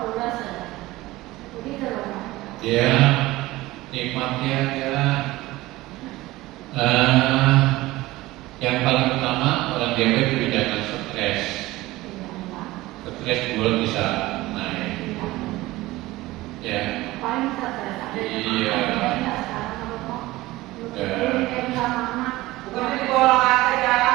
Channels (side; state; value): left; quieter; 18.5 dB